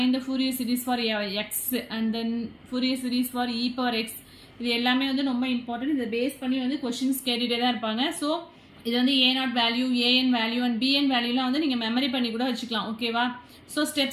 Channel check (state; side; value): identical; both; correlation 1.00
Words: the Fourier series for x and then Fourier series for e power x. இது எல்லாமே வந்து ரொம்ப இம்பார்ட்டன்ட். இதை பேஸ் பண்ணி வந்து கொஸ்டின்ஸ் கேட்டுகிட்டே தான் இருப்பாங்க. ஸோ இது வந்து a0 value, an value and bn வேல்யூலாம் வந்து நீங்கள் மெமரி பண்ணி கூட வச்சுக்கலாம். ஓகேவா, ஸோ